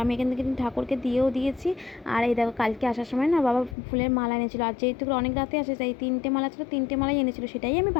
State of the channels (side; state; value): right; drops out; at 3.8 s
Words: আমি এখান থেকে ঠাকুরকে দিয়েও দিয়েছি। আর এই দেখো, কালকে আসার সময় না বাবা ফুলের মালা এনেছিল, আর যেহেতু অনেক রাতে আসে তাই 3টে মালা ছিল, 3টে মালাই এনেছিল, সেটাই আমি